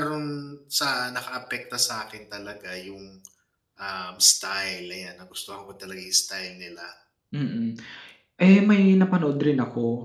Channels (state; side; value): identical; both; correlation 1.00